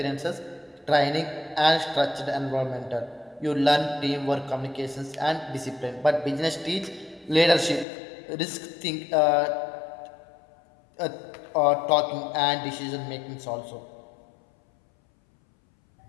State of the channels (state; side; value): drops out; right; at 7.9 s